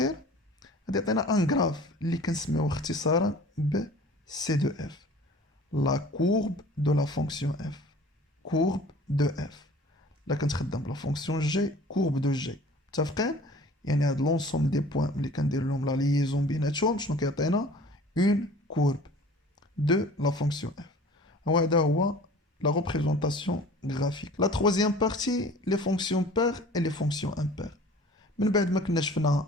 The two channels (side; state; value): both; normal; correlation 0.46